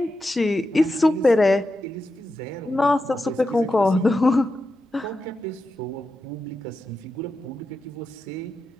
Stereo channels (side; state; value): both; normal; correlation 0.89